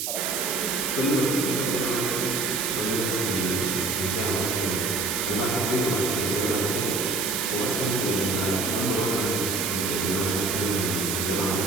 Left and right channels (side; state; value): right; noise; hiss, 1 dB below the sound